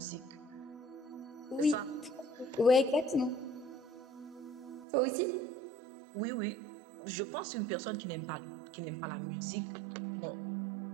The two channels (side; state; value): left; drops out; at 4.9 s